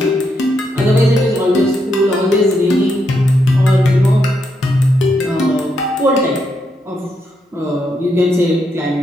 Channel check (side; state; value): both; normal; correlation 0.80